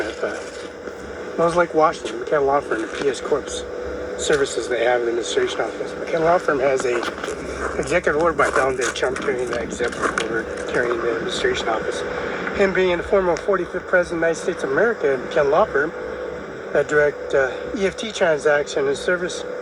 Smells Like Washington, McKenna Law Firm and PS Corp's services they have in the administration office. McKenna Law Firm has a executive order by Donald J. Trump carrying the executive order carrying the administration office. Him being the former 45th President of the United States of America and McKenna Law Firm, that direct EFT transaction and service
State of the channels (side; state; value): both; identical; correlation 1.00